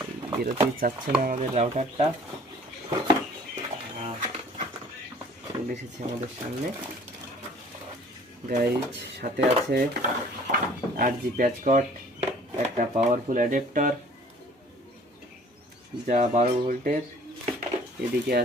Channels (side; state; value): both; normal; correlation 0.52